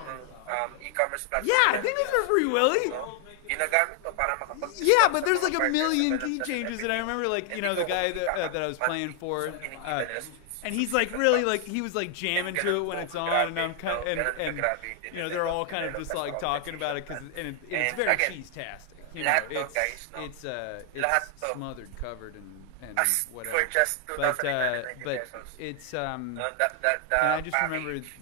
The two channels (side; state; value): both; different; correlation 0.00